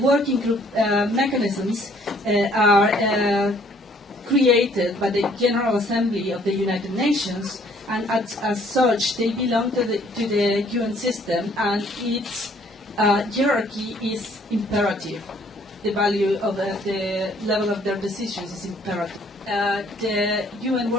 working group mechanisms are created by the General Assembly of the United Nations, and as such they belong to the UN system, and its hierarchy is imperative. The value of the level of their decisions is imperative. The UN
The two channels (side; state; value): both; normal; correlation 0.61